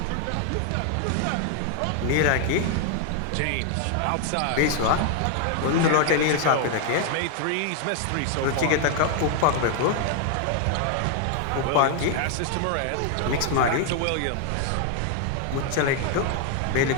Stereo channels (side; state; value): both; different; correlation 0.00